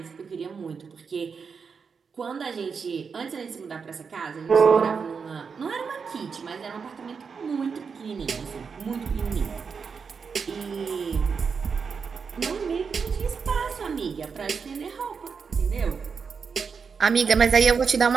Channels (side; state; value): left; quieter; 5.7 dB